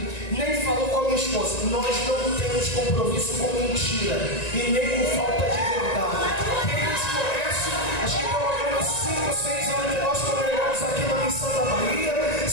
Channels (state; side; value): late; right; 1.9 ms